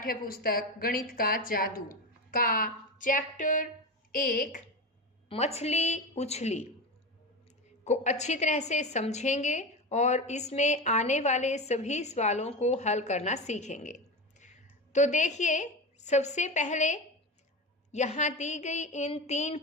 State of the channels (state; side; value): normal; both; correlation 0.21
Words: पुस्तक गणित का जादू का चैप्टर 1 मछली उछली को अच्छी तरह से समझेंगे और इसमें आने वाले सभी सवालों को हल करना सीखेंगे। तो देखिए, सबसे पहले यहाँ दी गई इन